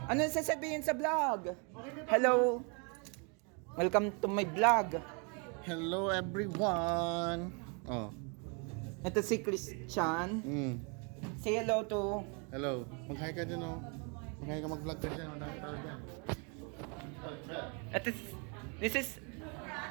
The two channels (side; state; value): left; quieter; 34.9 dB